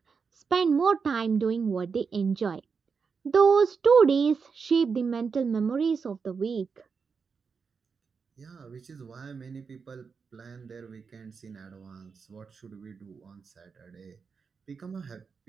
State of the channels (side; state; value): left; quieter; 5.5 dB